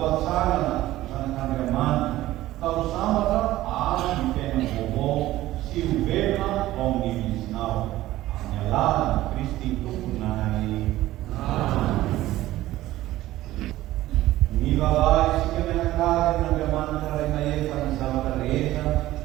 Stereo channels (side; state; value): left; quieter; 15.7 dB